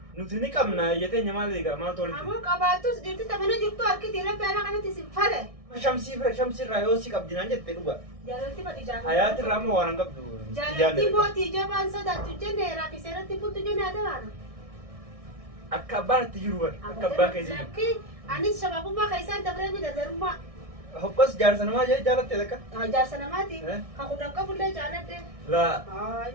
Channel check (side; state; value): left; late; 1.6 ms